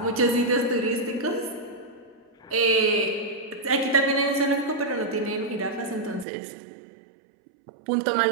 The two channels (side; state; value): left; drops out; at 6.2 s